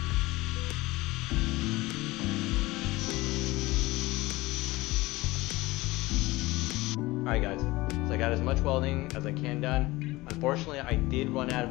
Alright guys, so I got as much welding as I can done. Unfortunately, I did run out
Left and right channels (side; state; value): right; quieter; 20.1 dB